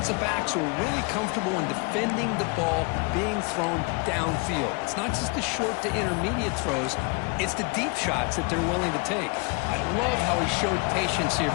backs who are really comfortable in defending the ball being thrown downfield. It's not just the short to intermediate throws, it's the deep shots that they're willing to take. I love how he showed patience here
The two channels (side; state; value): right; quieter; 31.1 dB